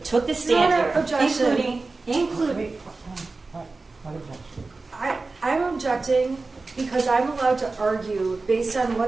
took the stand Your here, Honor, objection. including What objection? I'm objecting because I'm allowed to argue based on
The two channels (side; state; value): left; quieter; 3.7 dB